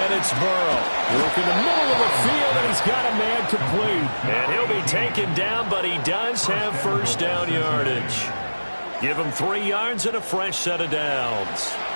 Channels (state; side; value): inverted; both; correlation -1.00